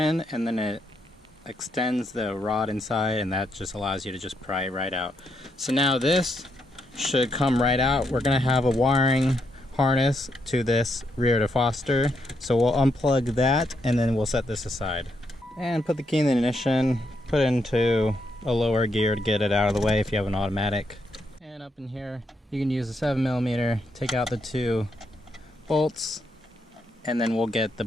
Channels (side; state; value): both; normal; correlation 0.78